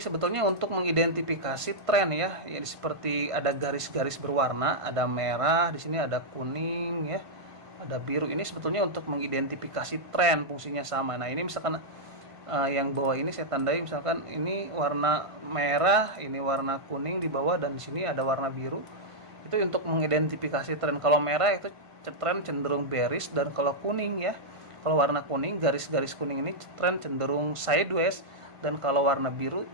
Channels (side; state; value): left; late; 1.5 ms